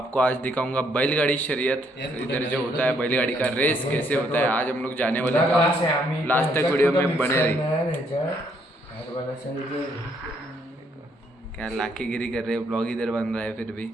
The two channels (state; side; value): normal; both; correlation 0.70